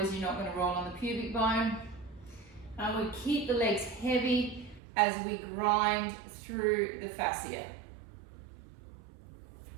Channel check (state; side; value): drops out; left; at 4.8 s